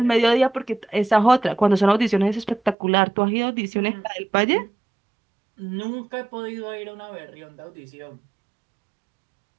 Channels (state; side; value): drops out; left; at 2.8 s